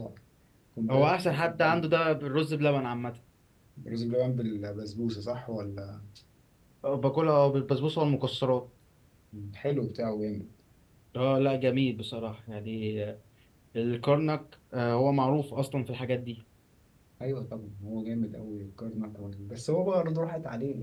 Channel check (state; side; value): identical; both; correlation 1.00